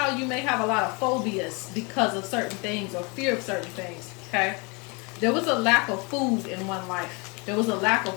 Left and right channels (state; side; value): quieter; right; 30.3 dB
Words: you may have a lot of phobias because of certain things or fear of certain things, okay? There was a lack of food in one life. There was a lack of